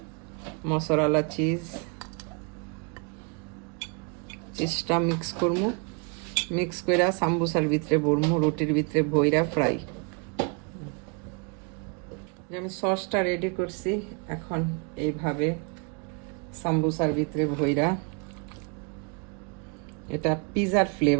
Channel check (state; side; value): quieter; left; 36.5 dB